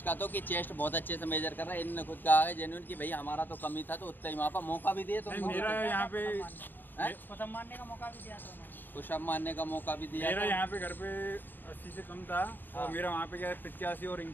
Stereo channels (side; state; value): right; late; 0.091 ms